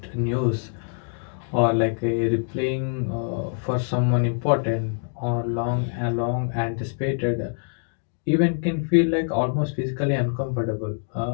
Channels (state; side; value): silent; right; digital silence